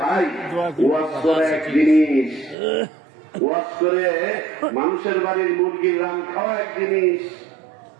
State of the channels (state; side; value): drops out; left; at 2.6 s